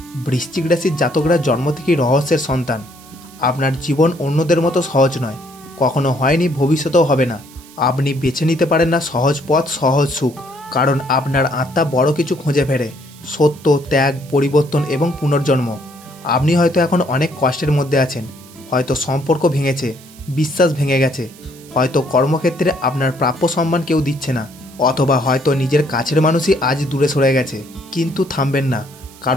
বৃশ্চিক রাশির জাতকরা জন্ম থেকেই রহস্যের সন্তান। আপনার জীবন অন্যদের মতো সহজ নয়, কখনো হয়নি, ভবিষ্যতেও হবে না। আপনি বেছে নিতে পারেন না সহজ পথ, সহজ সুখ, কারণ আপনার আত্মা বড় কিছু খুঁজে ফেরে, সত্য, ত্যাগ, পরিবর্তন এবং পুনর্জন্ম। আপনি হয়তো এখন অনেক কষ্টের মধ্যে আছেন, হয়তো সম্পর্ক ভেঙেছে, বিশ্বাস ভেঙে গেছে, হয়তো কর্মক্ষেত্রে আপনার প্রাপ্য সম্মান কেউ দিচ্ছে না, অথবা হয়তো নিজের কাছের মানুষই আজ দূরে সরে গেছে। কিন্তু থামবেন না,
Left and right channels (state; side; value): noise; right; hiss, 22 dB below the sound